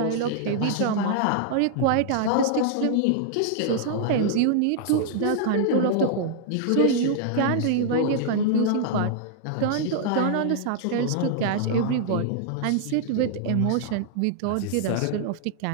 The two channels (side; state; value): both; different; correlation -0.01